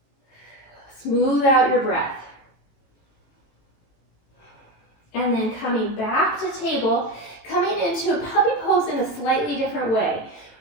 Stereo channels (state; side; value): late; right; 18 ms